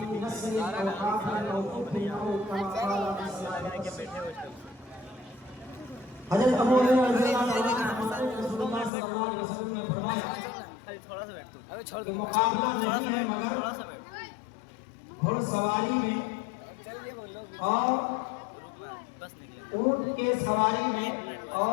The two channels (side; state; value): right; drops out; at 8.9 s